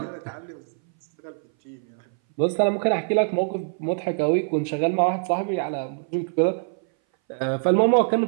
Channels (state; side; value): silent; left; 60 dB below the other